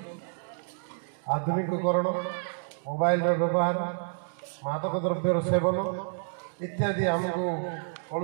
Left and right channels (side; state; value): left; silent; digital silence